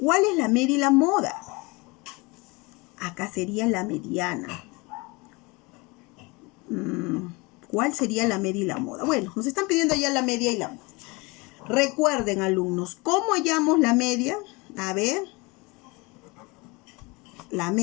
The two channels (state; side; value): quieter; right; 26.1 dB